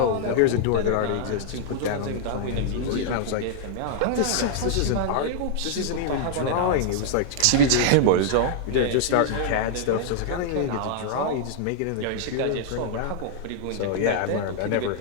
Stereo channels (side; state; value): both; different; correlation -0.01